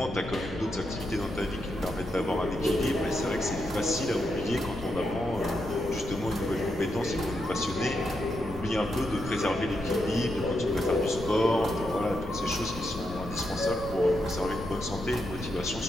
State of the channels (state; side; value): noise; left; rumble, 10 dB below the sound